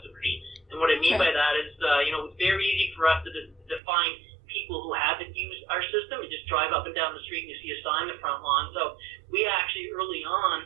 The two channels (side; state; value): left; drops out; at 3.8 s